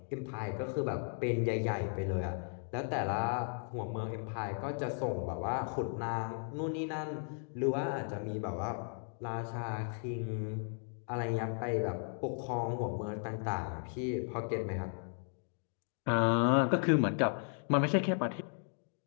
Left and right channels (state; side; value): silent; right; 54 dB below the other